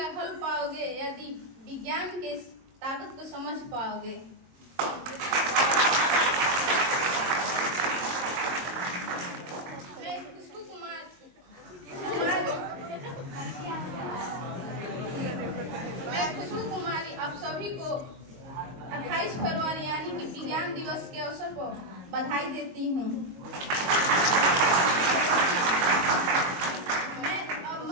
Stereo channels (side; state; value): left; late; 22 ms